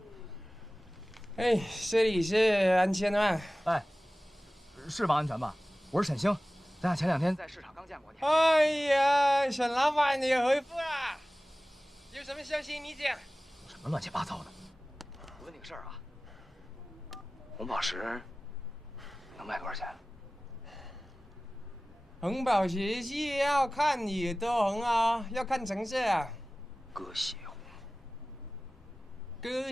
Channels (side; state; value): both; normal; correlation 0.97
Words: 哎，这里是安全吗？哎，是王安全吧？我是沈星，咱俩前2天在市场刚见过你。哎呀，沈老板，你回复了，有什么消息你讲？什么乱七八糟的？我问你个事儿啊，红宝石能卖多少钱？红宝石是要看有多红啊，要看成色啊。鸽血红。